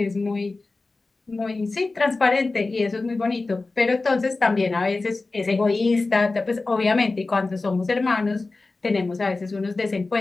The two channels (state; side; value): quieter; right; 3.5 dB